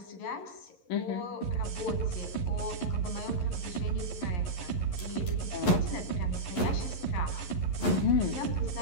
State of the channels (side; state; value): right; late; 11 ms